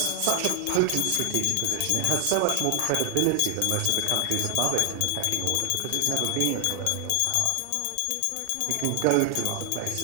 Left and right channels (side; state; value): both; different; correlation 0.00